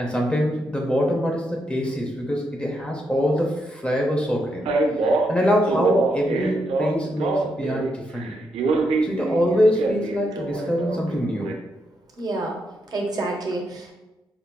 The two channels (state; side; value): normal; both; correlation 0.81